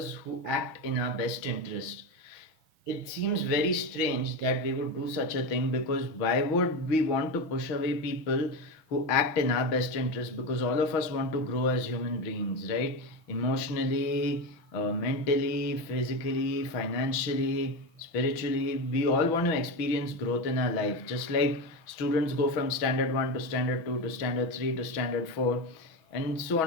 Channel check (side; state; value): right; late; 6.2 ms